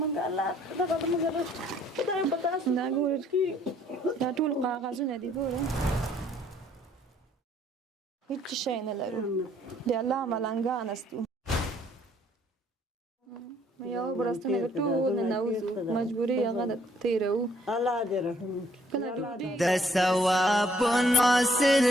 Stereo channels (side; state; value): both; normal; correlation 0.64